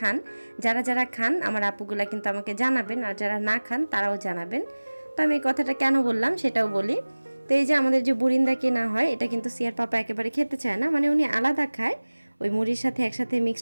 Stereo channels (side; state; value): both; inverted; correlation -1.00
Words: যারা যারা খান আমার আপুগুলা কিন্তু আমাকে জানাবেন, আর যারা না খান তারাও জানাবেন। তো আমি এই কথাটা কেন বললাম সেটাও বলি। তো এই যে আমাদের যে বুরিন্দা কেনা হয়, এটা কিন্তু সিয়ার পাপা একেবারে খেতে চায় না, মানে উনি আলাদা খায়, ওই মুড়ির সাথে একসাথে